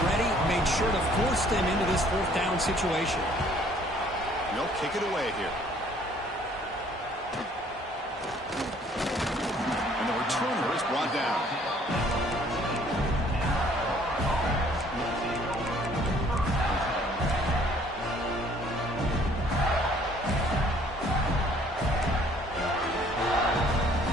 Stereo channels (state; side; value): normal; both; correlation 0.59